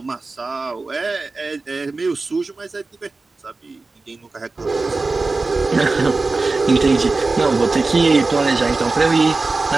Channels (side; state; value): left; quieter; 3.6 dB